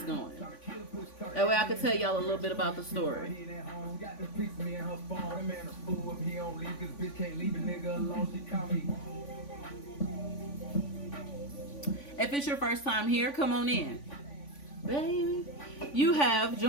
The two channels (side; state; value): right; late; 3.5 ms